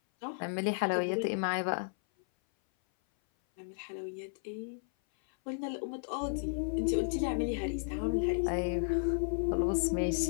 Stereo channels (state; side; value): silent; right; 56 dB below the other